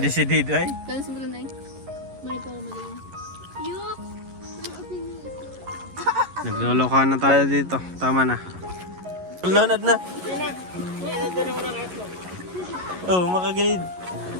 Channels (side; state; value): left; late; 11 ms